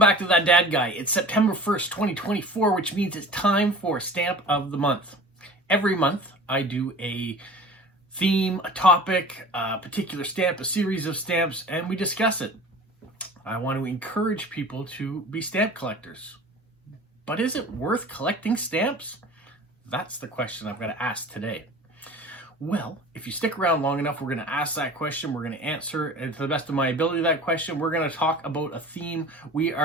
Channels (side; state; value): both; normal; correlation 0.40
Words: to That Dad Guy. It's September 1st, 2024, which means it's time for Stamp of the Month. Every month, I do a theme, a topic, a particular stamp, a series of stamps, and we discuss it. I want to encourage people to be stamp collectors. But is it worth collecting stamps? That's the question I'm going to ask today. Well, if you stick around long enough, we're going to ask that question. We're going to answer to the best of my ability that question. We're going to talk about a theme. We